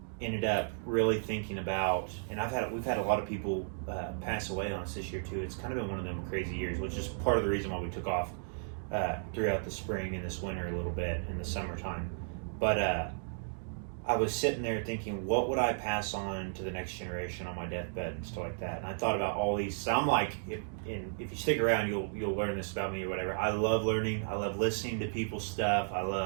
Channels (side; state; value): left; silent; digital silence